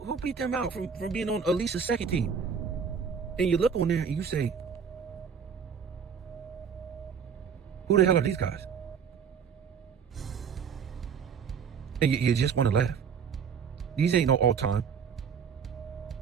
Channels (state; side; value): quieter; left; 6.7 dB